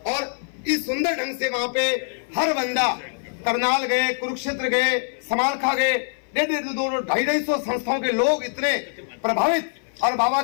और इस सुंदर ढंग से वहां पे हर बंदा, करनाल गए, कुरुक्षेत्र गए, समालखा गए, 250 संस्थाओं के लोग इतने प्रभावित और बाबा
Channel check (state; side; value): silent; right; 56 dB below the other